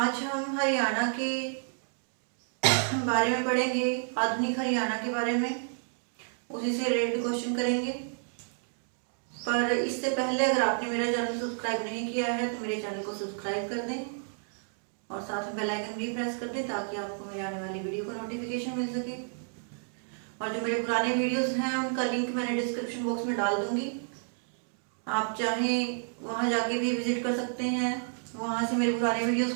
हम हरियाणा के बारे में पढ़ेंगे, आधुनिक हरियाणा के बारे में। उसी से रिलेटेड क्वेश्चन करेंगे। पर इससे पहले अगर आपने मेरा चैनल सब्सक्राइब नहीं किया है तो मेरे चैनल को सब्सक्राइब कर दें और साथ में बेल आइकन भी प्रेस कर दें ताकि आपको मेरे आने वाली वीडियो का नोटिफिकेशन मिल सके। और जो मेरे पुराने वीडियोस हैं उनका लिंक मैंने डिस्क्रिप्शन बॉक्स में डाल दूंगी। आप चाहें वहां जाके भी विजिट कर सकते हैं, वहां से मेरे पुराने वीडियोस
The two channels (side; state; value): left; silent; digital silence